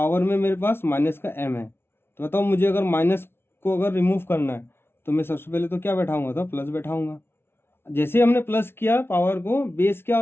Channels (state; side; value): late; right; 0.12 ms